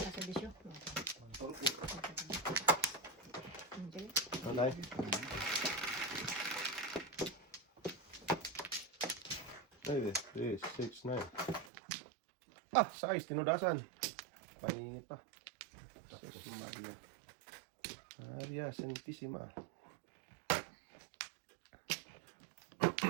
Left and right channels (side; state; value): left; drops out; at 11.7 s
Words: bisyo. Alay. Ay, 3, 6, 9. Ah, size, tinudasan. Paningit pa. Tapos Maria. Maria Santissima.